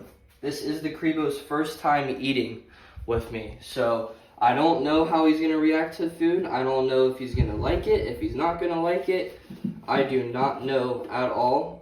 This is the Creo's first time eating with me. So, I don't know how he's going to react to the food. I don't know if he's going to like it, if he's not going to like it. I do not know at all.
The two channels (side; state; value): both; identical; correlation 1.00